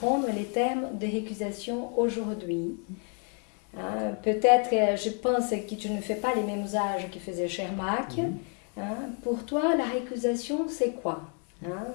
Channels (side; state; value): right; quieter; 39.4 dB